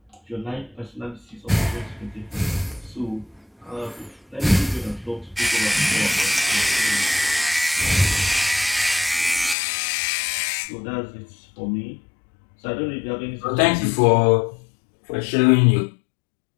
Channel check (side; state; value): right; drops out; at 9.6 s